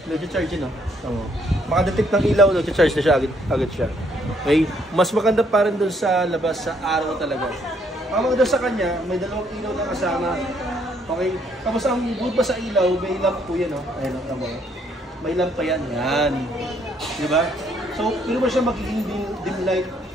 nag-charge yun. Makadetect ng ilaw, nag-charge na siya, agad siya. Okay? Mas maganda pa rin doon sa labas, sa araw talaga. Ang maganda sa kanya, may dalawang ilaw na kasama. Okay? Tapos ang good pa sa ilaw, may lamp po yan. Ayan, may lamp pa yan. Yan. Diba? So, hindi mo siya magiging dim light,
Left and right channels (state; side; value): normal; both; correlation 0.68